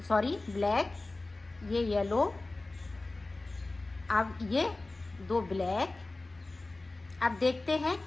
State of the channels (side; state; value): right; quieter; 3.1 dB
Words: सॉरी ब्लैक, ये येलो, अब ये 2 ब्लैक। अब देखते हैं